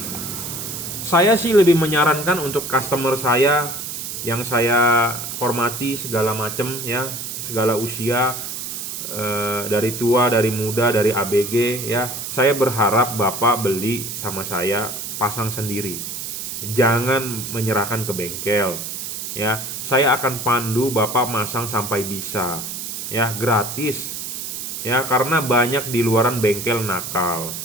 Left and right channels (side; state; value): right; noise; hiss, 6 dB below the sound